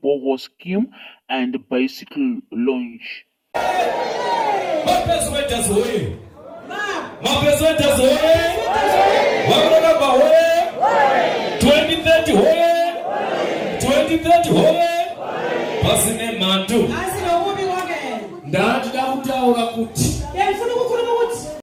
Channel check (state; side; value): identical; both; correlation 1.00